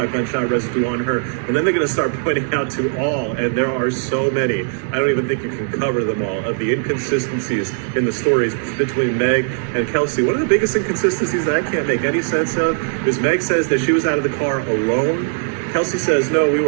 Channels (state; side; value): silent; left; digital silence